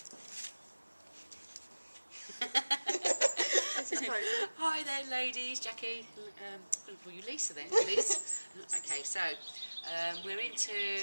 Hi there, ladies. Jackie. I'm going to call you Lisa then, Liz. Okay, so we're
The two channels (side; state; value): both; inverted; correlation -1.00